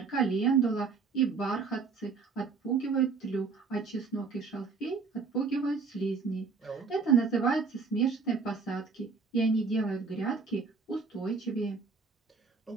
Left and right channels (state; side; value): quieter; left; 4.9 dB